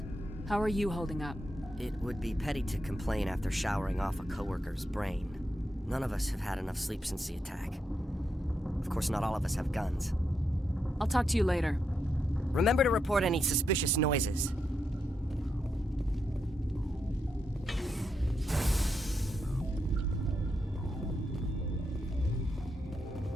How are you holding up? It would be petty to complain after showering off a coworker's brain. None of us have had enough sleep since the attack. Of course, not all of us have guns. I'll talk to you later. Remember to report any suspicious noises.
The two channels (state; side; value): normal; both; correlation 0.83